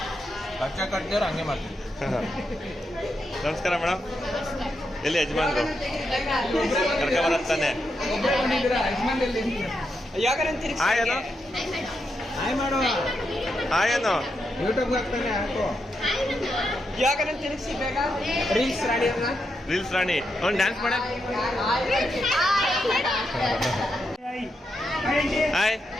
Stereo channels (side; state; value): both; normal; correlation 0.83